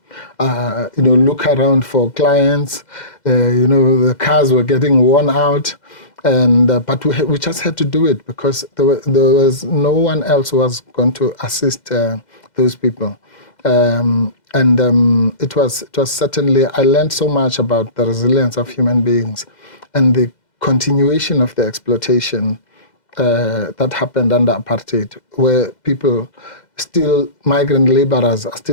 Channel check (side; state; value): right; late; 2.0 ms